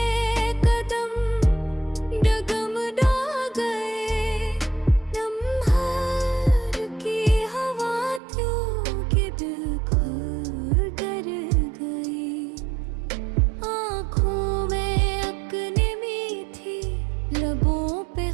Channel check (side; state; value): left; drops out; at 8.2 s